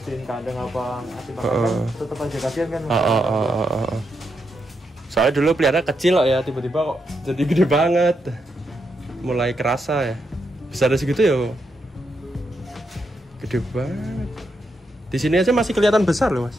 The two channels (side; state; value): both; normal; correlation 0.82